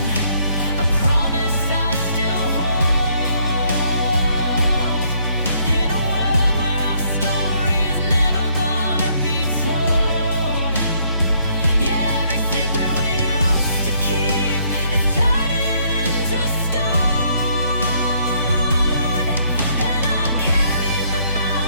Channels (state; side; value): inverted; both; correlation -0.68